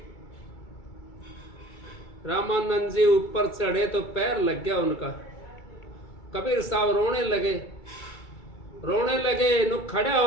रामानंद जी ऊपर चढ़े तो पैर लग गया उनका। कबीर साहब रोने लगे। नु खड़ा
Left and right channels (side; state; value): right; late; 2.3 ms